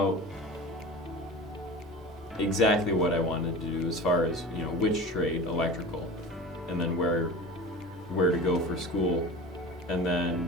exactly what I wanted to do as far as, which trade, electrical, and then where to go for school. And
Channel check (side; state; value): both; normal; correlation 0.35